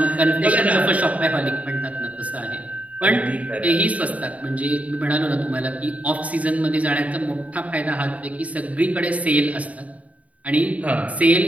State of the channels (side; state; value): left; late; 0.069 ms